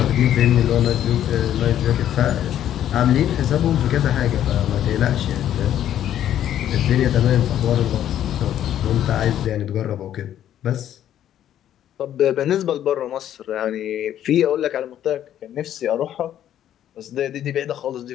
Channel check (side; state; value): right; quieter; 11.1 dB